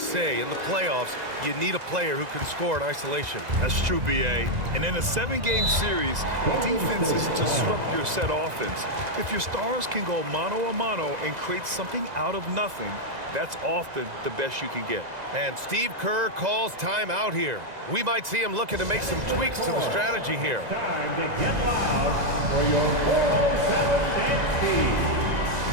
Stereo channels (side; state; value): left; late; 2.0 ms